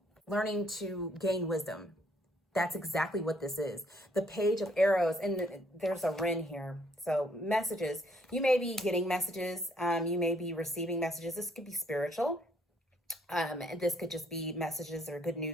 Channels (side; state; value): both; normal; correlation 0.67